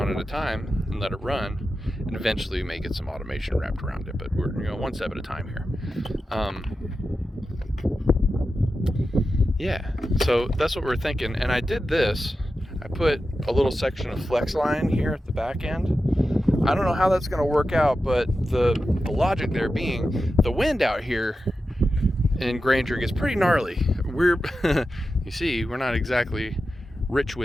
at a time and let it run, and eventually we may get some automation wrapped around it, but we're one step at a time here. Yeah, so that's what we're thinking. And I did this, I put a little section of flex line here at the back end. I don't know how that's going to work out, but the logic there being, the wind out here in Granger gets pretty gnarly. We're you see, we're not exactly rich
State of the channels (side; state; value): both; normal; correlation 0.91